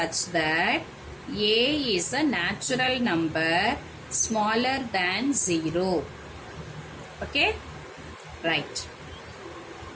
that A is a natural number smaller than 0. Okay? Right.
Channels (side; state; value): both; identical; correlation 1.00